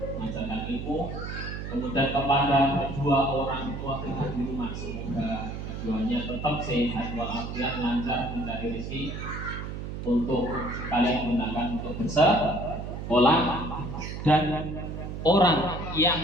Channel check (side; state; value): right; noise; hum, 7 dB below the sound